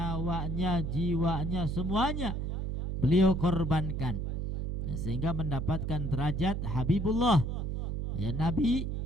jiwanya, semuanya beliau korbankan, ya, sehingga mendapatkan derajat Habibullah. Ya, Nabi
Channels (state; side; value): noise; right; hum, 2 dB below the sound